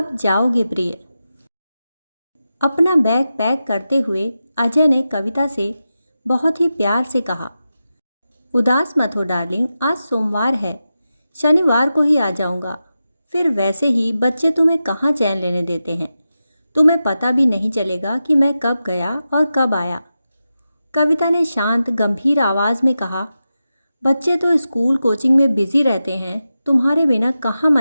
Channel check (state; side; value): inverted; both; correlation -0.91